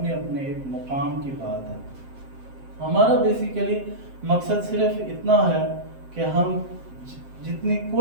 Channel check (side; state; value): left; late; 7.6 ms